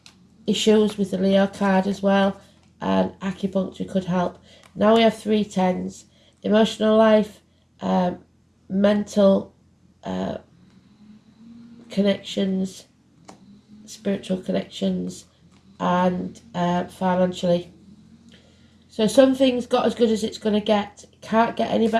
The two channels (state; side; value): identical; both; correlation 1.00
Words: issues with the Leo card as well. And acupuncture could help. Now we have 3 10s. Emotional life, mental connections, spiritual connections, and financially. So something's got as good as it's going to get. It can't get any